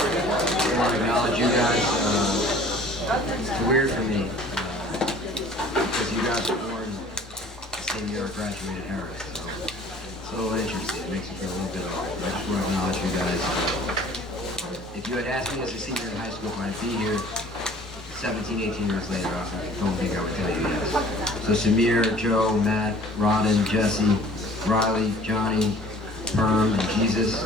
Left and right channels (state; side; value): normal; both; correlation 0.50